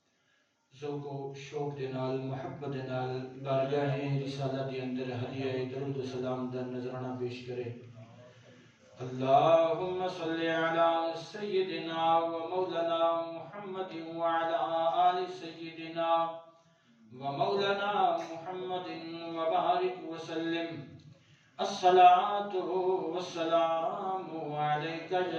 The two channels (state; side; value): identical; both; correlation 1.00